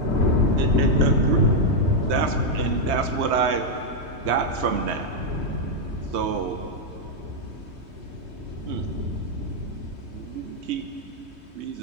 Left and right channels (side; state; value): left; late; 3.2 ms